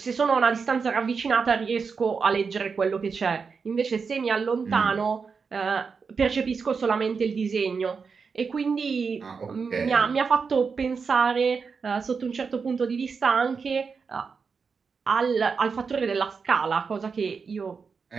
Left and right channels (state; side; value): quieter; left; 5.4 dB